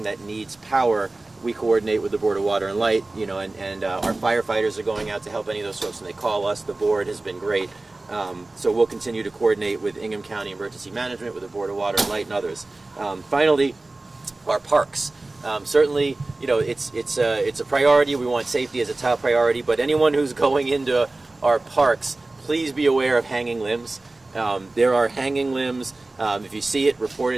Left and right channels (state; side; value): quieter; left; 3.0 dB